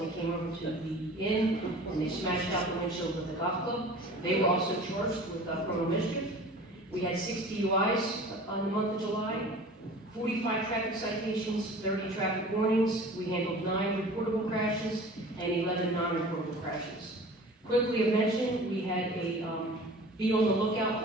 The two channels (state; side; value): normal; both; correlation 0.42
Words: came over to the inn, and they smashed out the windshield with a golf club. They were also charged with criminal mischief. We had 6 DUIs on the month of July, 45 traffic citations, 30 traffic warnings. We handled 9 reportable crashes and 11 non-reportable crashes. Quickly of mention, we had a be on the lookout